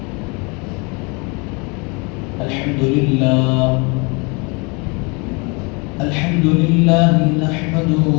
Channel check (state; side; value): quieter; right; 30.4 dB